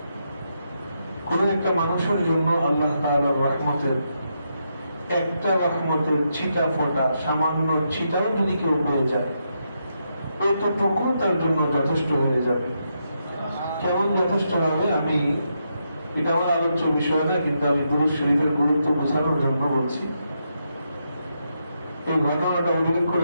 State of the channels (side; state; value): both; inverted; correlation -0.81